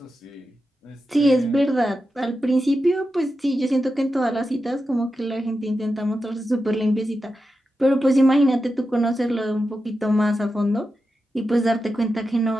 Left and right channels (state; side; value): normal; both; correlation 0.90